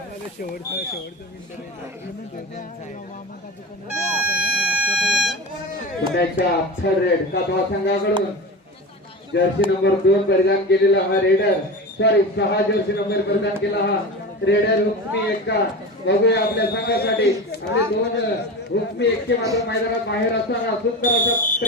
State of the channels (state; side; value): normal; both; correlation 0.27